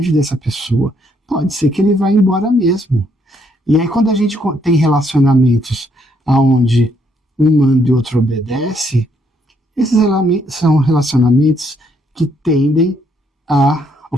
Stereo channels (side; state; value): both; normal; correlation 0.71